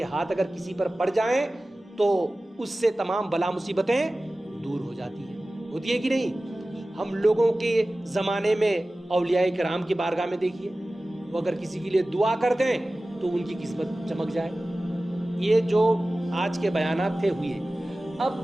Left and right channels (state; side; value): normal; both; correlation 0.96